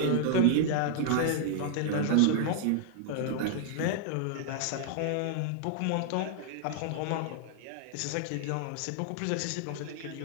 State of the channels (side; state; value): both; different; correlation -0.01